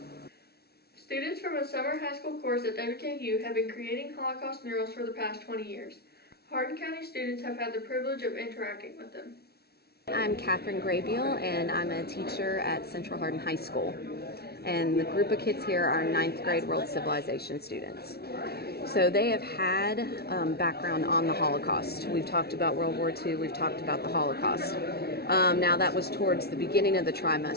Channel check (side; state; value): right; late; 0.46 ms